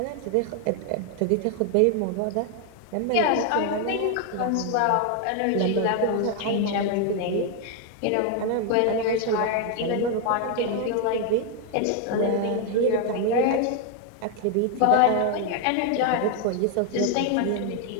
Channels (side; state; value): both; different; correlation 0.01